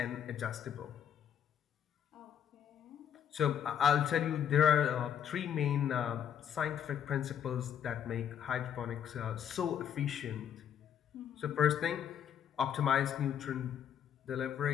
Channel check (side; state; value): right; quieter; 9.0 dB